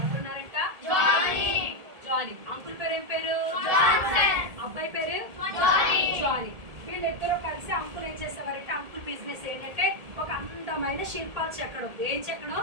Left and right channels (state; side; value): late; left; 1.7 ms